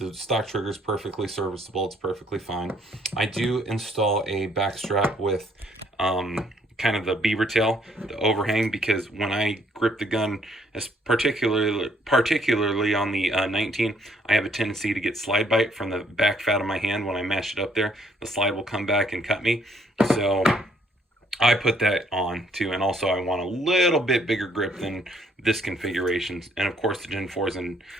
stock trigger is perfectly serviceable. It's perfectly fine. I do install a back strap with kind of the beaver tail, the overhang, because when I grip the gun, as particularly on the 19, I have a tendency to get slide bite from the back fat of my hand. When I mash it up there, the slide will come back and cut me. So I put that on too, and also I want a little bit bigger grip than this configuration, and of course the Gen 4s and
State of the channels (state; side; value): normal; both; correlation 0.66